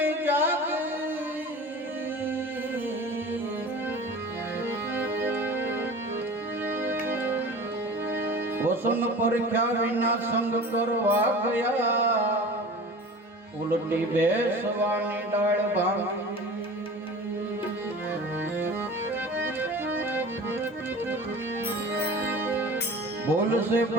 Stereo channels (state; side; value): normal; both; correlation 0.38